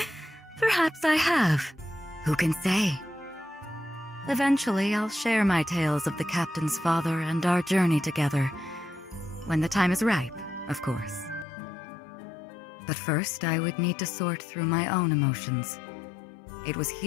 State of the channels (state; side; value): drops out; right; at 11.5 s